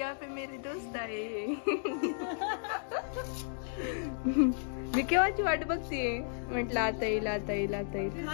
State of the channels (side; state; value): right; silent; digital silence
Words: पे मेरे दोस्त आए. मी केव्हाची वाट बघतीये, म्हटलं आता येईल आता येईल आता येईल.